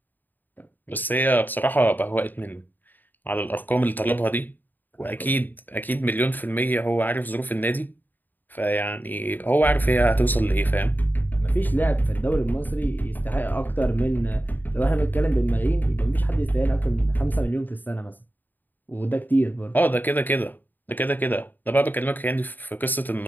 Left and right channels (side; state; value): right; late; 0.088 ms